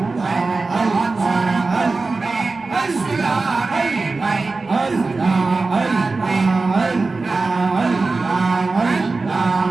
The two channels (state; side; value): quieter; left; 3.8 dB